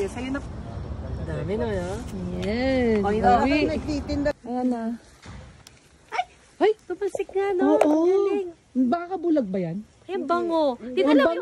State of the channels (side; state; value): both; identical; correlation 1.00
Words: sa'yo na. Dami na, no? Yes. Oh, ito. Ayan na. Ay, tumasik nga, no? Oo. Galing. Baka bulag ba yan? Ay, bango. Dito Ang lang bango.